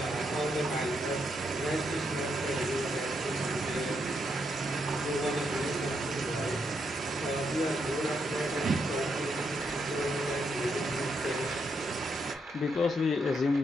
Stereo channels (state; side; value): normal; both; correlation 0.79